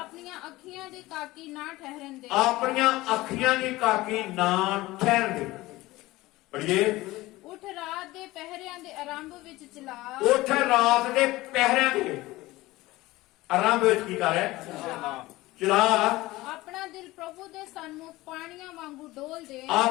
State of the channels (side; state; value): right; quieter; 18.9 dB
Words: ਅੱਖੀਆਂ ਦੀ ਕਾਕੀ ਨਾ ਠਹਿਰਨ ਦੇ। ਆਪਣੀਆਂ ਅੱਖੀਆਂ ਦੀ ਕਾਕੀ ਨਾ ਠਹਿਰਨ ਦੇ। ਪੜ੍ਹੀਏ, ਉੱਠ ਰਾਤ ਦੇ ਪਹਿਰਿਆਂ ਦੇ ਆਰੰਭ ਵਿੱਚ ਚਲਾ, ਉੱਠ ਰਾਤ ਦੇ ਪਹਿਰਿਆਂ ਦੇ ਆਰੰਭ ਵਿੱਚ ਕੀ ਕਰ ਰਿਹਾ? ਚਲਾ। ਆਪਣਾ ਦਿਲ ਪ੍ਰਭੂ ਦੇ ਸਨਮੁਖ ਪਾਣੀਆਂ ਵਾਂਗੂ ਡੋਲ ਦੇ,